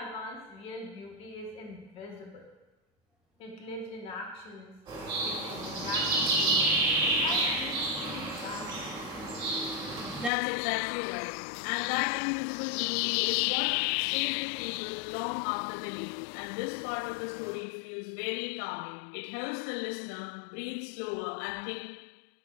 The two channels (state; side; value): drops out; right; at 10.3 s